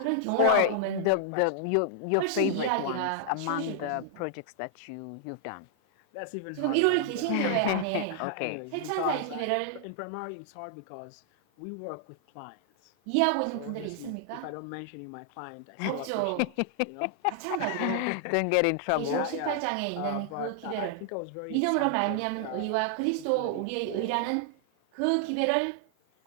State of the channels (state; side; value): different; both; correlation 0.00